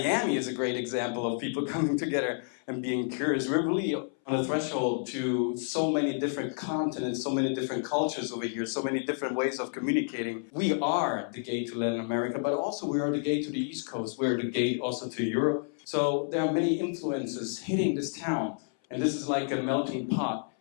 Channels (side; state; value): right; silent; 58 dB below the other